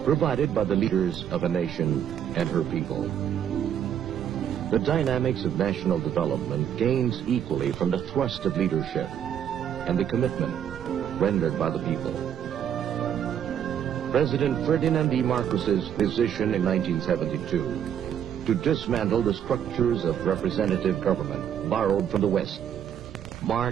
provided by the leaders of a nation and her people. The dynamics of national development gains equally from the thrust of leadership and the commitment rendered by the people. President Ferdinand E. Marcos's decision in 1972 to dismantle the structures of representative government borrowed from the West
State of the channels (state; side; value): quieter; left; 9.3 dB